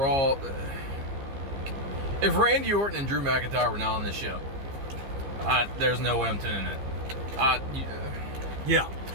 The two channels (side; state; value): left; late; 15 ms